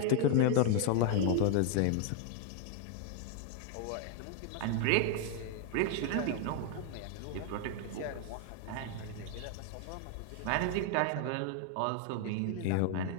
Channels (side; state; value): both; different; correlation 0.00